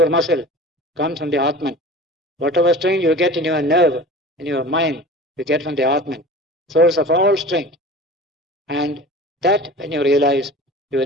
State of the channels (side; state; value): both; normal; correlation 0.37